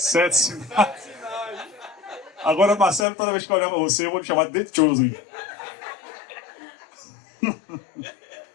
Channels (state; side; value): drops out; right; at 3.1 s